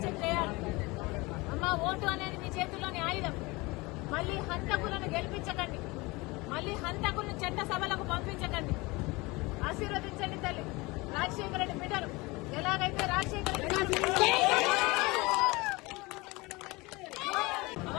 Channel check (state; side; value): quieter; right; 23.7 dB